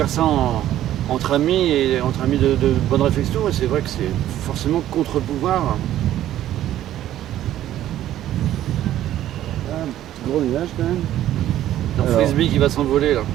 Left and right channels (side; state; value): left; quieter; 12.7 dB